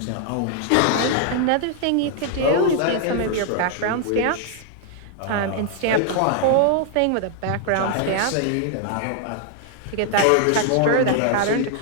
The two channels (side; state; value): both; different; correlation 0.00